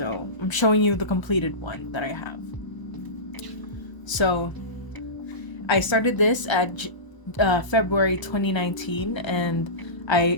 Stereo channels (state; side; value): late; right; 1.0 ms